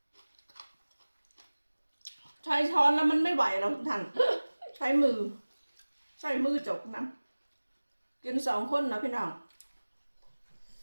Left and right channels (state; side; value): inverted; both; correlation -1.00